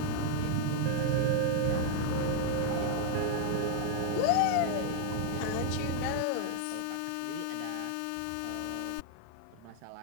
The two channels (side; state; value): both; different; correlation 0.00